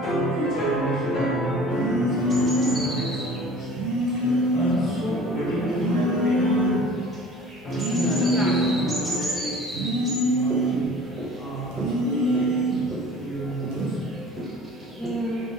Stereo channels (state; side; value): normal; both; correlation 0.45